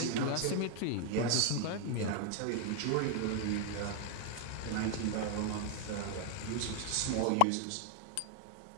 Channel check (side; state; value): both; different; correlation 0.00